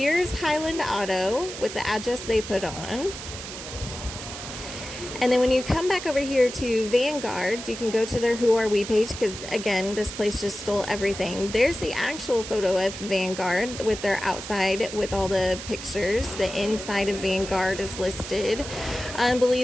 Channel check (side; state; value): right; noise; hiss, 10 dB below the sound